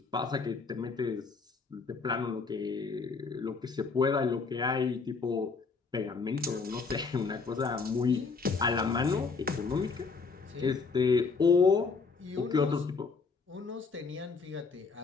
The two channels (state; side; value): quieter; right; 4.7 dB